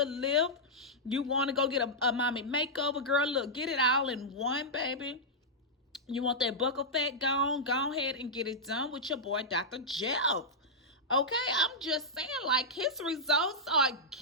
lift. You want to go get a mommy makeover, girl, look, get it all in one, baby. You want that buckle fat gone? Go ahead and get it done with your boy, Dr. Jeff. Okay, I'm just saying, like, his results are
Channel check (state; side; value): normal; both; correlation -0.09